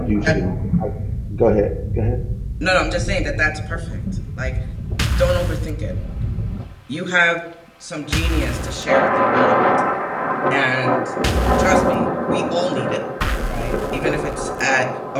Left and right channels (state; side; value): identical; both; correlation 1.00